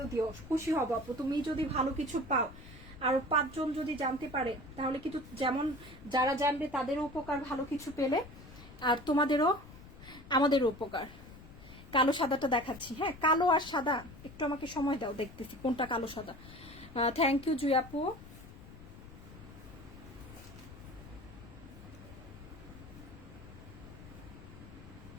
দিও, খুশি হব আপু। তুমি যদি ভালো কিছু পাও আর 5 জন যদি জানতে পারে তাহলে কিন্তু যেমন যারা জানবে তাদেরও উপকার, ভালো কিছু পেলে, আর তোমাদেরও আমাদেরও উপকার। কালো সাদাটা দেখাচ্ছি। হ্যাঁ, কালো আর সাদা, একটু আমাকে সময় দাও, দেখতেছি কোনটা কালো সাদা। থ্যাংক ইউ জুই আপু।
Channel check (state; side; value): noise; left; rumble, 17 dB below the sound